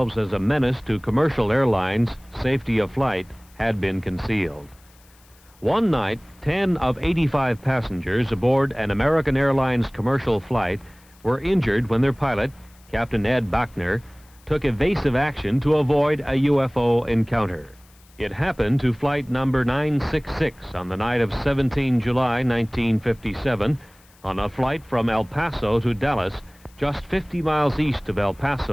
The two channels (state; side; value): noise; left; hiss, 29 dB below the sound